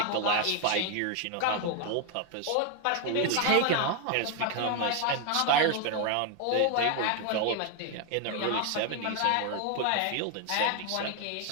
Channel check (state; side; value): different; both; correlation 0.01